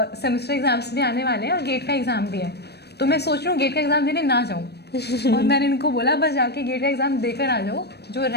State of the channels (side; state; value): right; late; 0.48 ms